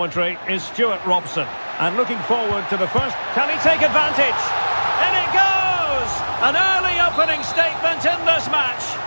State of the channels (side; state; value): both; inverted; correlation -1.00